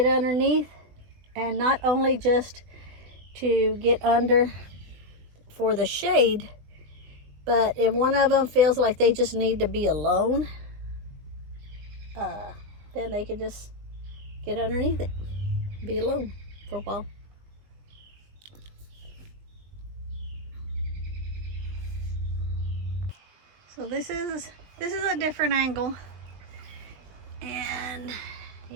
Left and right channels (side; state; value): left; late; 20 ms